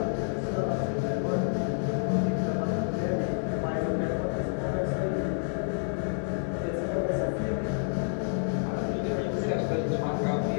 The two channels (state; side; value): silent; right; 56 dB below the other